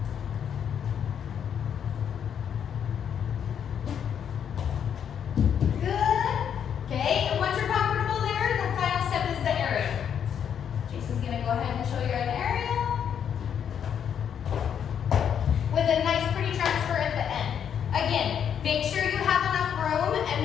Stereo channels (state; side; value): quieter; right; 8.4 dB